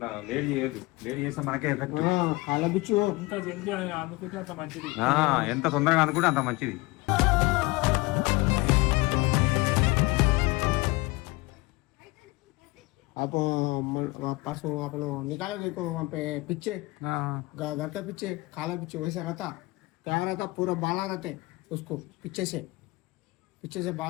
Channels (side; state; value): right; quieter; 22.5 dB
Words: లేట్ చేయదు. లేట్ చేస్తే మనకే ఎఫెక్ట్. అలా బిచ్చు. ఇంకా జల్దీ అనుకుంటే అంత మంచిది. ఎంత తొందరగా అనుకుంటే అంత మంచిది. आप परसों अपने निकाले देखो वहाँ पे पीछे घर के पीछे काला पीछे वैसे रहता क्या रहता पूरा बाला रहते उसको पीछे से